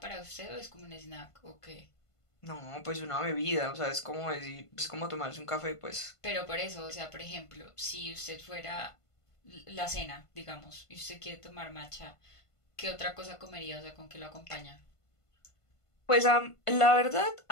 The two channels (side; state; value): right; late; 1.5 ms